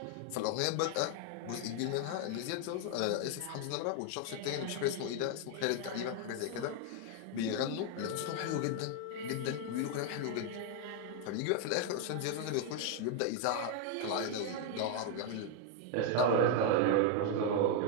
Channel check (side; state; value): both; different; correlation 0.00